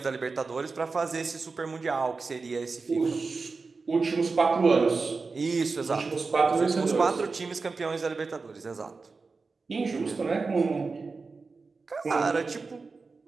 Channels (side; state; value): left; quieter; 4.3 dB